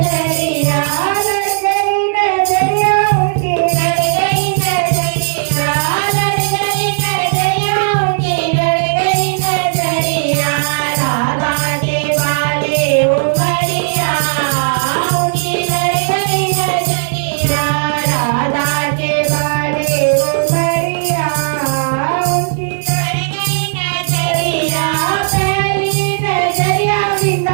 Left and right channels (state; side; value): silent; left; digital silence